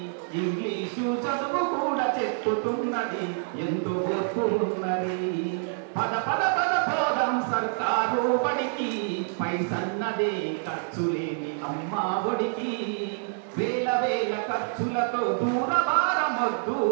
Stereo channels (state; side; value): silent; left; digital silence